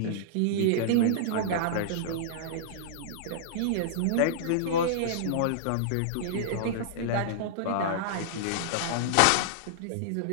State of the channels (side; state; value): both; different; correlation -0.02